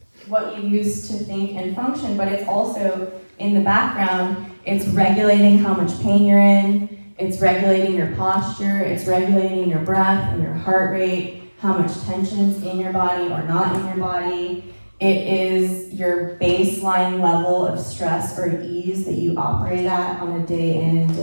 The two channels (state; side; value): inverted; both; correlation -1.00